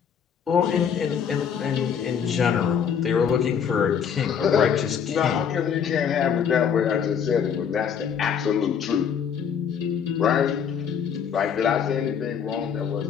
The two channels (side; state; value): right; quieter; 7.6 dB